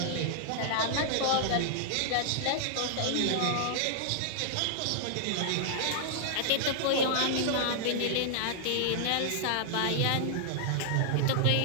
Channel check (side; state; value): both; different; correlation -0.01